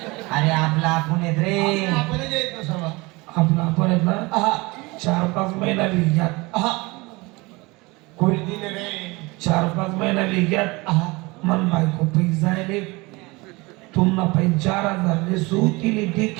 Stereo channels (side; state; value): left; quieter; 24.1 dB